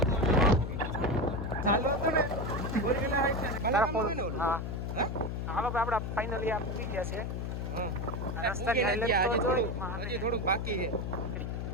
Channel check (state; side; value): noise; left; hum, 3 dB below the sound